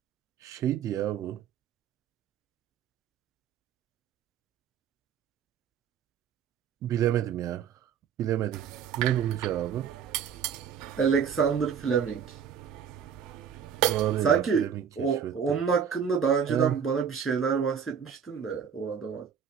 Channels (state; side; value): quieter; left; 7.5 dB